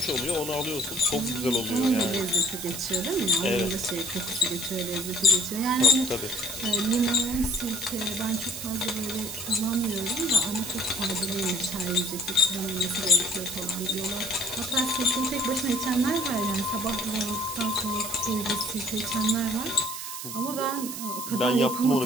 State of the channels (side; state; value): right; noise; hiss, 7 dB below the sound